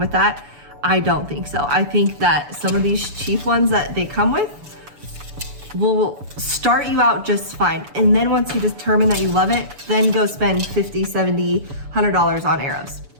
that. I don't think so. I think that some of these cheap ones that they come with will start you out just fine. And then once you determine that you love it, then go spend $50, $70, $100 on arrows.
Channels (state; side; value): late; left; 7.0 ms